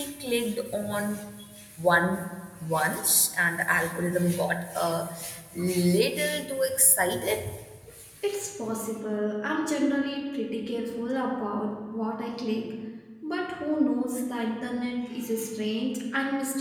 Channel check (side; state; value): both; identical; correlation 1.00